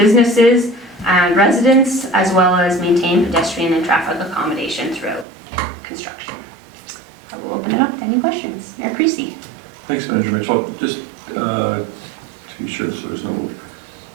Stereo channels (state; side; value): drops out; left; at 5.2 s